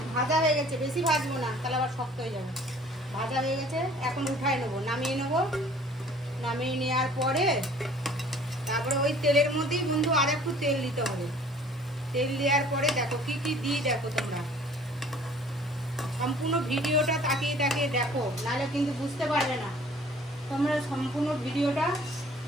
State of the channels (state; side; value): normal; both; correlation 0.52